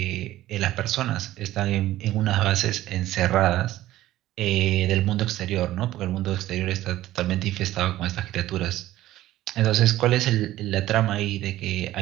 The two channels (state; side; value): quieter; left; 14.9 dB